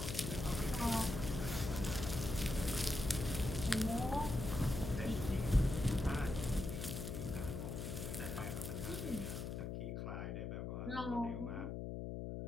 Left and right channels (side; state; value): left; noise; hum, 4 dB below the sound